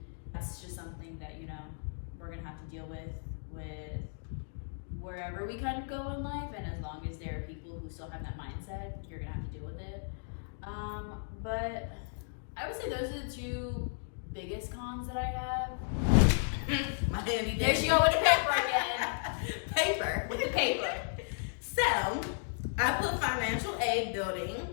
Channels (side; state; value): right; silent; digital silence